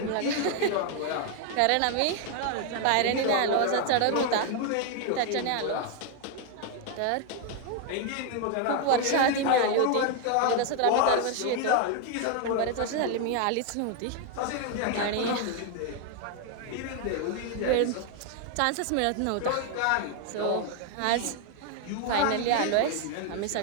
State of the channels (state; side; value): different; both; correlation 0.01